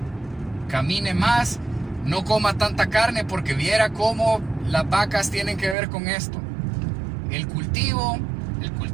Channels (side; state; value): left; drops out; at 5.8 s